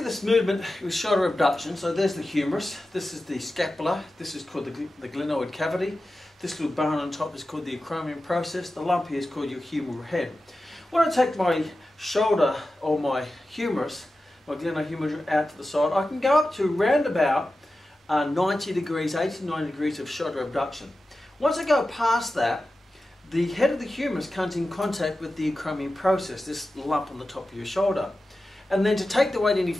this movement with shoulder abduction, so there's the humerus, this is the scapula, this is called the glenoid cavity, this little bone on top is called the acromion process, the lump here is called your humeral head. When I take my shoulder or my humerus, my glenohumeral out to the side, I can go up to round about 90 degrees, 80 to 90 degrees of shoulder abduction. Once I go past that, the head of the humerus comes in contact with the acromion process, this lump on the top of your shoulder. And then to take the weight any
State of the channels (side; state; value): both; normal; correlation 0.93